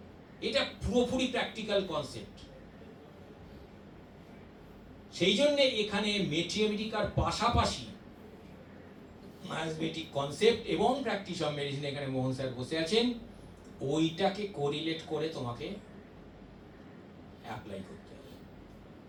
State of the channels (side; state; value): both; identical; correlation 1.00